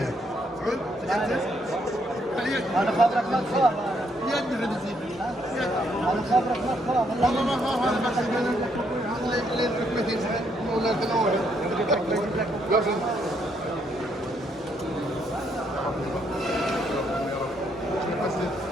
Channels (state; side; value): normal; both; correlation 0.73